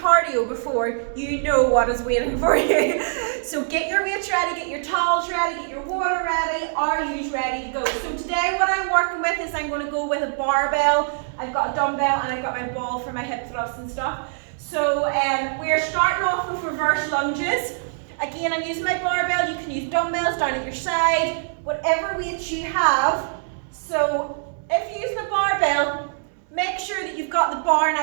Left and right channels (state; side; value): silent; left; digital silence